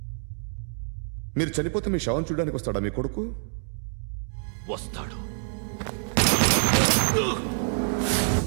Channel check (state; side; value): silent; left; digital silence